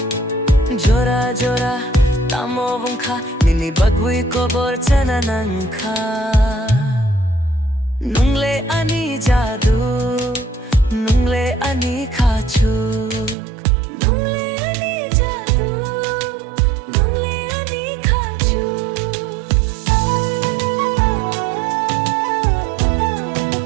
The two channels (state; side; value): drops out; left; at 13.4 s